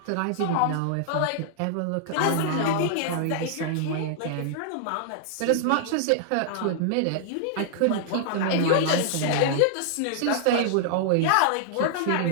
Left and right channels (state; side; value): different; both; correlation -0.01